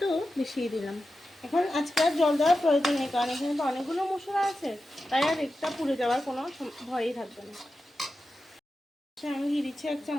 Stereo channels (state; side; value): normal; both; correlation 0.91